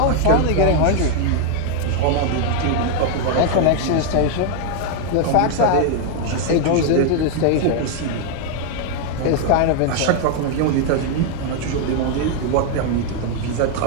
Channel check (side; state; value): both; different; correlation 0.00